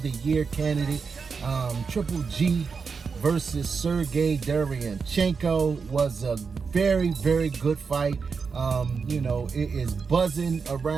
the year candidate. Triple G versus Sergey Derevyanchenko was a very, very good fight. You know, it is buzzing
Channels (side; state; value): left; quieter; 5.3 dB